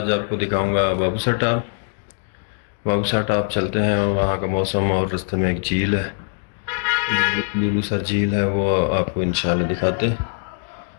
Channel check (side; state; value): right; silent; digital silence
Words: आपको दिखाऊंगा बाबूसर टाप। बाबूसर टाप चलते हैं, वहां का मौसम और रास्ते में एक झील है, लुलू सर झील है, वो आपको इंशाल्लाह दिखाते हैं।